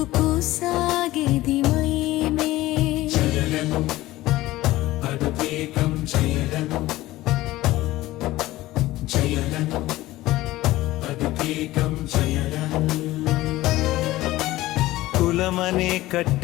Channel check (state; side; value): quieter; right; 17.1 dB